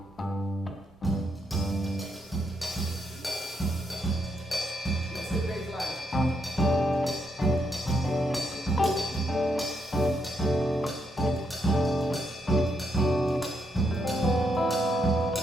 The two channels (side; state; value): both; normal; correlation 0.78